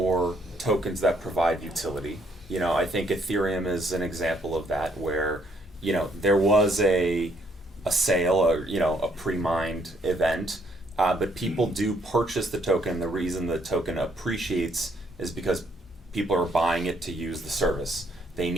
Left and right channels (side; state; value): both; normal; correlation 0.69